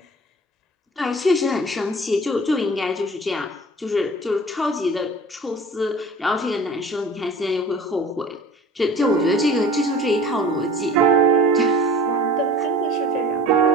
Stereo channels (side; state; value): both; normal; correlation 0.43